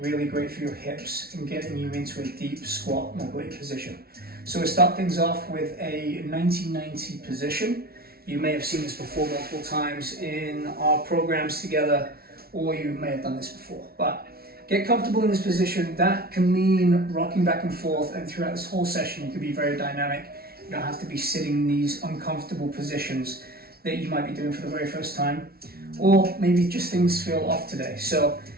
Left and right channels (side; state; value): left; late; 0.44 ms